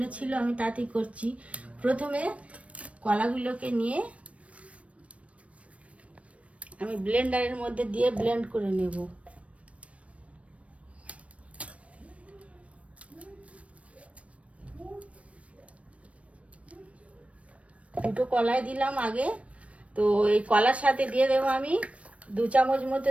ছিল, আমি তাতেই করছি। প্রথমে কলাগুলোকে নিয়ে আমি ব্লেন্ডারের মধ্যে দিয়ে ব্লেন্ড করে নেব। দুটো কলাই দিলাম আগে। তো এই কলার সাথে দিয়ে দেবো আমি 2 চামচ মতো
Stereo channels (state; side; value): late; left; 0.064 ms